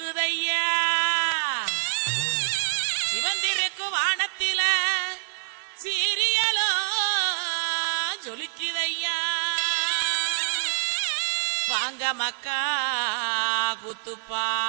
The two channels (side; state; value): left; silent; 61 dB below the other